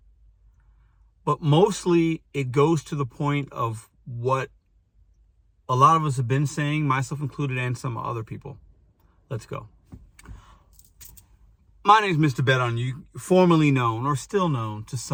But mostly it goes to the point of what a lot of us have been saying, myself included, and some other people. Let's go. My name is Mr.BetonYou, formerly known or still known to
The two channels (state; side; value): identical; both; correlation 1.00